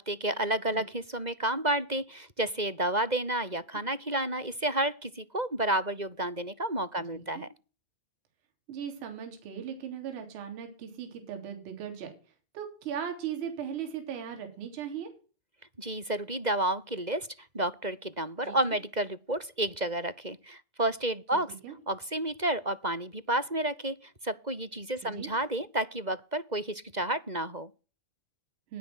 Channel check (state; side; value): late; left; 2.0 ms